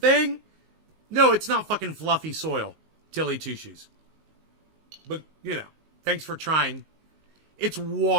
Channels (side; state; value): left; late; 19 ms